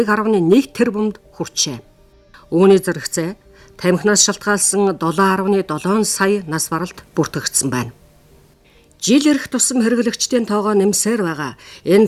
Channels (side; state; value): both; identical; correlation 1.00